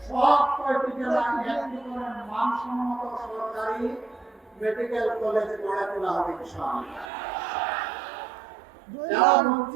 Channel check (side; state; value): left; drops out; at 7.1 s